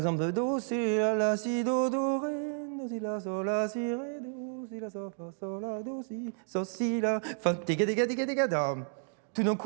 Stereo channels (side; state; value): left; silent; 57 dB below the other